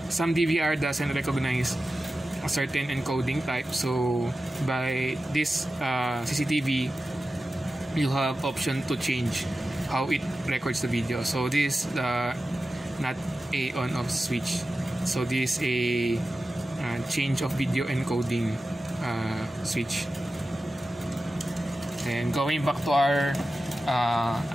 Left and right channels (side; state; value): both; normal; correlation 0.93